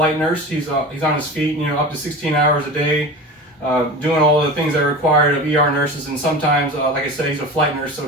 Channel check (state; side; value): normal; both; correlation 0.32